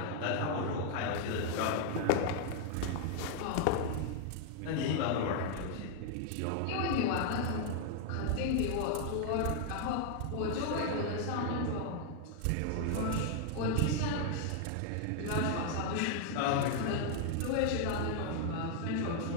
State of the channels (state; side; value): different; both; correlation 0.00